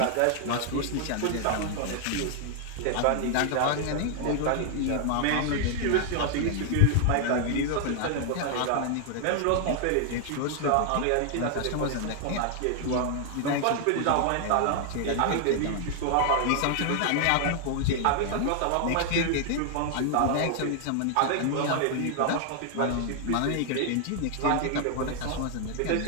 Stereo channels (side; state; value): both; different; correlation 0.00